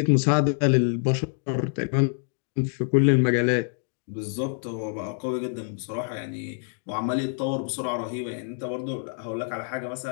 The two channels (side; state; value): right; silent; digital silence